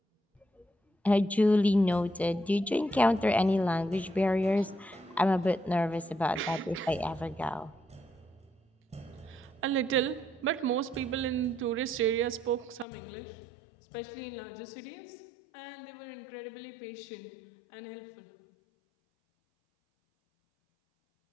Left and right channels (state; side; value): drops out; right; at 12.9 s